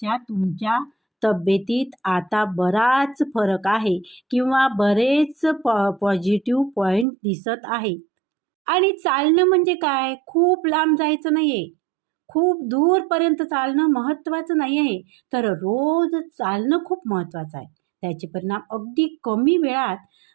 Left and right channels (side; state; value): left; drops out; at 7.1 s